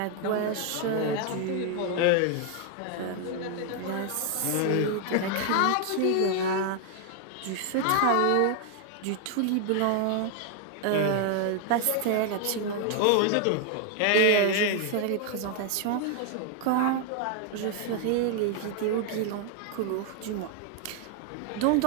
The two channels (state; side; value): different; both; correlation 0.00